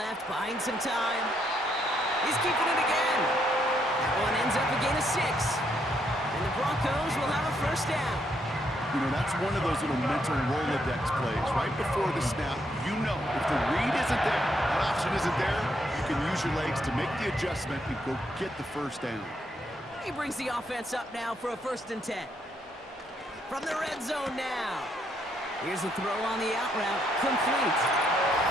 buying some time. He's keeping it again. That one ends up a gain of 6. And the Broncos will have a first down. You know, that's one of those little mental Rolodex plays. Right before the snap, you know if the read isn't there, that option isn't there, you can use your legs to make the adjustment and go get the first down. He brings the offense up now for a 1st and 10. From the red zone now. Here's a throw on the out route. Complete.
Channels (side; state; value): both; normal; correlation 0.74